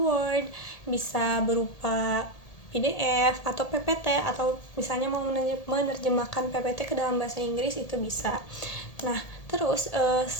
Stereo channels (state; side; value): late; right; 1.8 ms